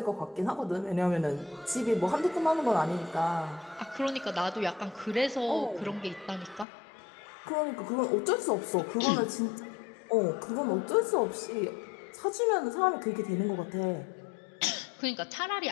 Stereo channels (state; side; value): drops out; right; at 6.7 s